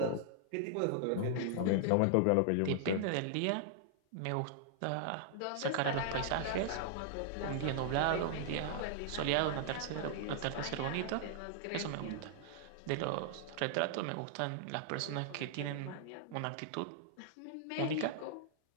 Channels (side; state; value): both; different; correlation -0.01